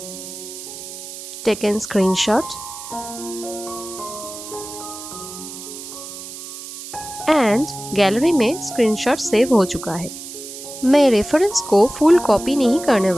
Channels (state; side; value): noise; right; hiss, 11 dB below the sound